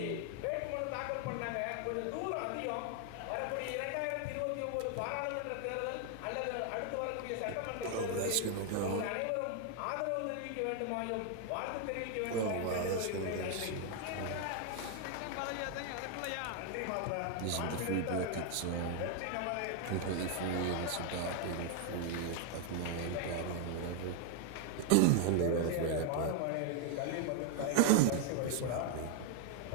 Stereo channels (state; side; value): different; both; correlation 0.00